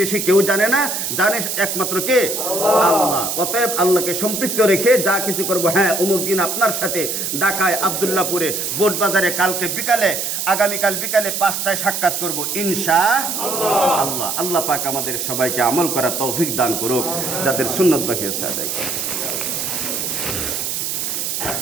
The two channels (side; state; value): right; noise; hiss, 2 dB below the sound